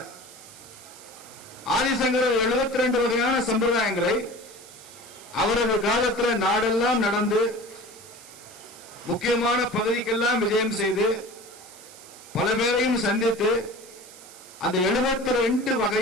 ஆதிசங்கரர் 72 வகையான சம்பிரதாயங்களை அவரது காலத்தில் நாடெல்லாம் நடந்து முக்கியமான பகுதிக்கெல்லாம் விஜயம் செய்து பல பேரையும் சந்தித்து அந்த 72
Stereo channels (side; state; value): right; noise; hiss, 19 dB below the sound